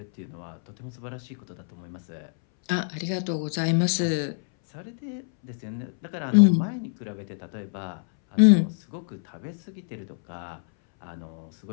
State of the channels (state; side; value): silent; right; 60 dB below the other